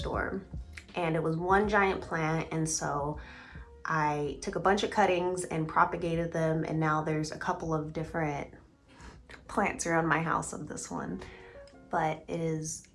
and it was one giant plant, and so I took a bunch of cuttings and propagated them, and now there's a couple of different plants around my house of this one. But it is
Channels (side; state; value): both; identical; correlation 1.00